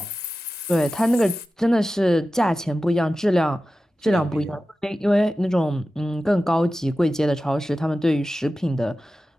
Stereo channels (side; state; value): both; normal; correlation 0.94